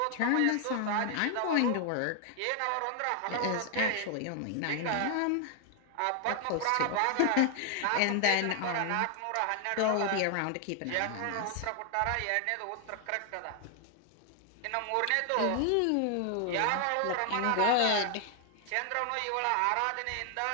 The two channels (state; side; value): different; both; correlation 0.00